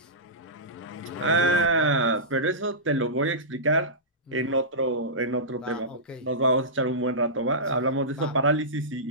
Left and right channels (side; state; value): both; normal; correlation -0.17